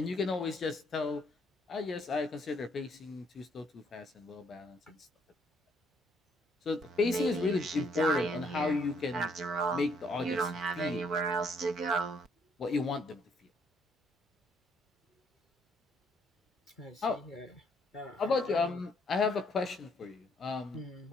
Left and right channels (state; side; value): normal; both; correlation 0.68